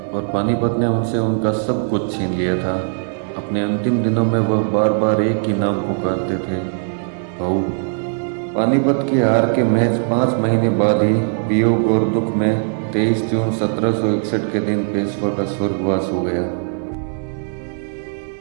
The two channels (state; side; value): silent; left; 58 dB below the other